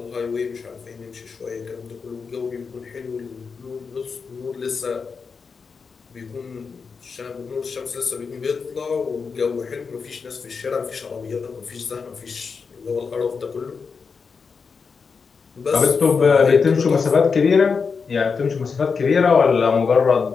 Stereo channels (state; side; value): quieter; right; 5.3 dB